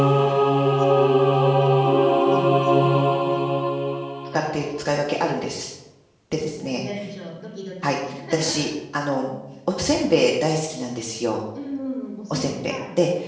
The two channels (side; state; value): both; identical; correlation 1.00